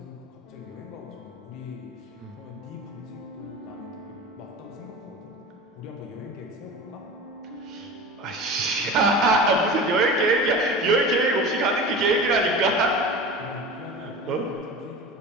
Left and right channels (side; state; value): both; normal; correlation 0.33